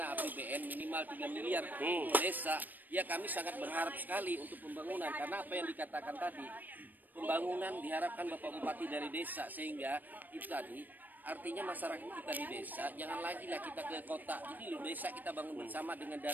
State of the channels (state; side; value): late; left; 0.088 ms